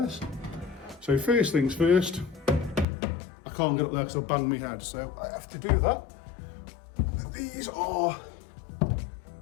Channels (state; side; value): drops out; right; at 2.9 s